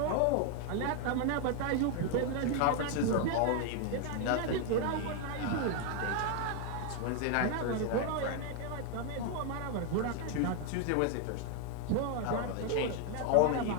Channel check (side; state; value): both; different; correlation 0.00